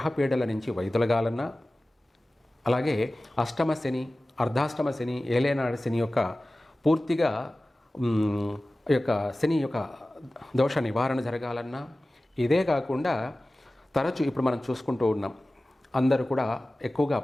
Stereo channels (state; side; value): normal; both; correlation 0.97